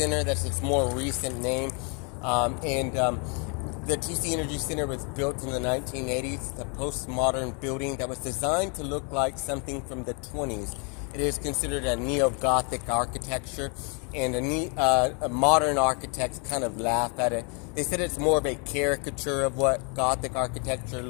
That's its more recent name. The TC Energy Center was built in the 1980s. It's a postmodern building that was designed to look like something from the 20s. It is considered a neo-Gothic architecture, and a modern architects kind of laugh at it. They said it's more of a caricature of what Gothic architecture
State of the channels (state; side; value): quieter; right; 35.7 dB